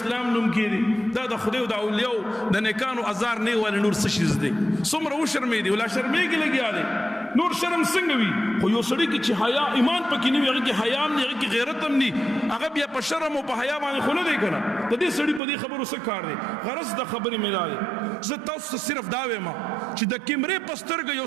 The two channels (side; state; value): left; drops out; at 15.4 s